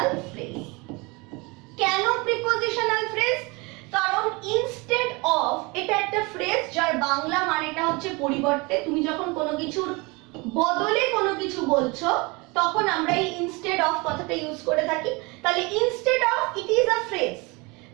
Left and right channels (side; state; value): left; quieter; 26.6 dB